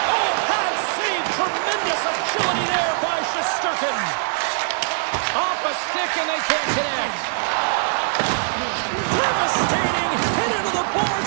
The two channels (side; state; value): left; silent; digital silence